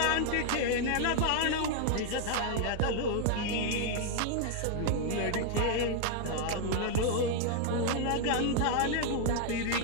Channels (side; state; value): both; different; correlation 0.00